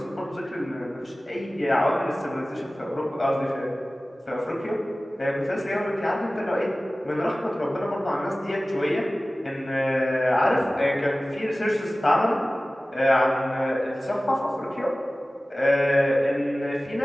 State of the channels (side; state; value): both; normal; correlation 0.97